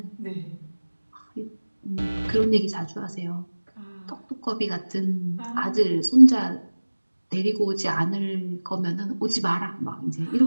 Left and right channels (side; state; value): both; inverted; correlation -1.00